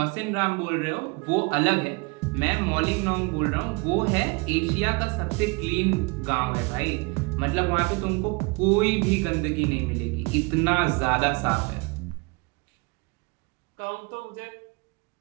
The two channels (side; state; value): left; quieter; 28.8 dB